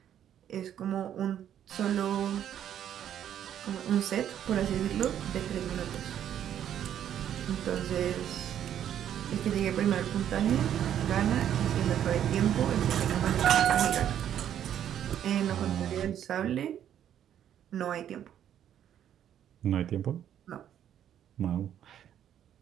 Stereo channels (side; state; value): left; quieter; 10.1 dB